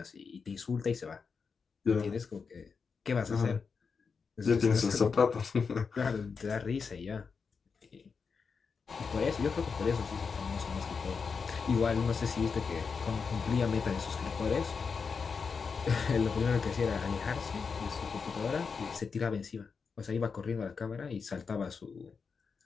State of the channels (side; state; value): right; quieter; 5.4 dB